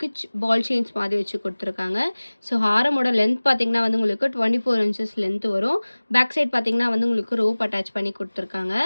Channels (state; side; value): inverted; both; correlation -1.00